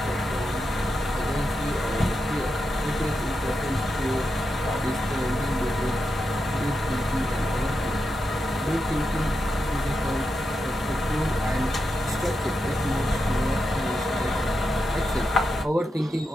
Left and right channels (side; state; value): both; normal; correlation 0.87